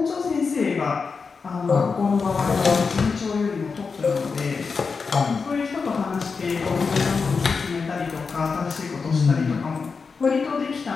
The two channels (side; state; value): right; quieter; 5.0 dB